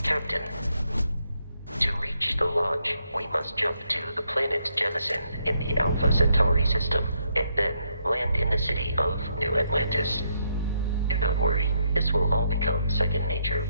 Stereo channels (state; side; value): inverted; both; correlation -0.77